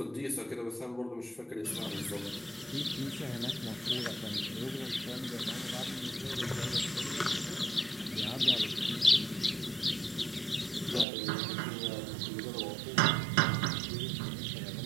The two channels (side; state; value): left; drops out; at 11.1 s